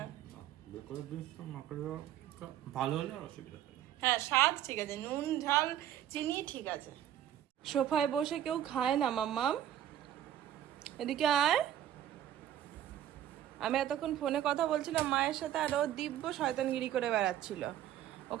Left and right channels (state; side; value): quieter; left; 11.5 dB